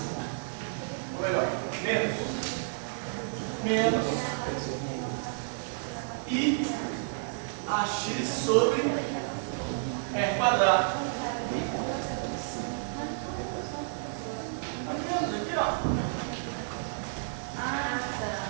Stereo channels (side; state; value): left; silent; digital silence